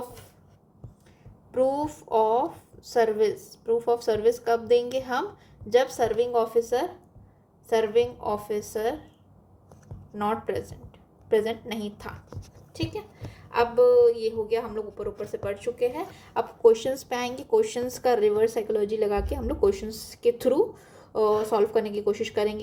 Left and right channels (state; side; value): identical; both; correlation 1.00